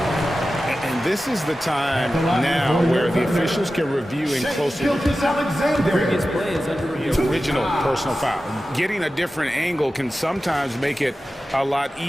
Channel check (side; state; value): both; normal; correlation 0.94